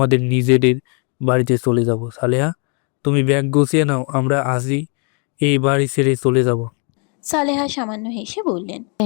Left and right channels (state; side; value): quieter; right; 37.1 dB